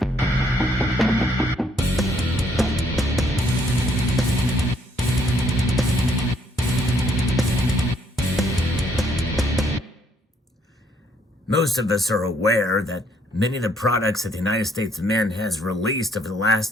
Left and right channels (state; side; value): normal; both; correlation 0.68